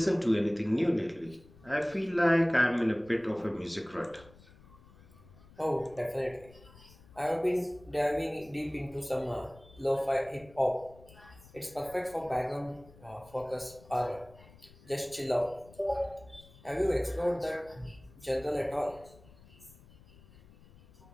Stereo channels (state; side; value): noise; left; rumble, 23 dB below the sound